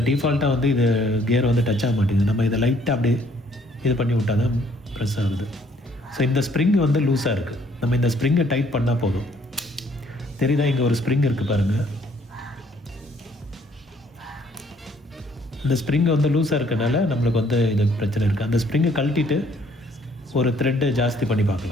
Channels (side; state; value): both; normal; correlation 0.64